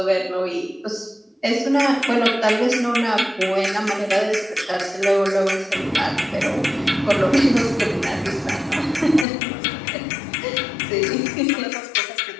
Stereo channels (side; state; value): right; drops out; at 9.2 s